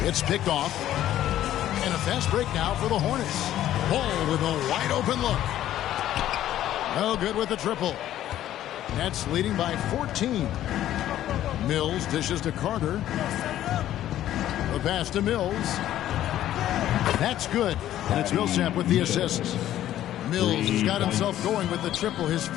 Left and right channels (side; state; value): right; quieter; 12.6 dB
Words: It's picked off. And a fast break now for the Hornets. Ball with a wide open look. No good with the triple. Nets leading by 14. Mills dishes to Carter. The pass to Mills. That's good. And it's Millsap with the assist. Mills has got himself going with the triple, his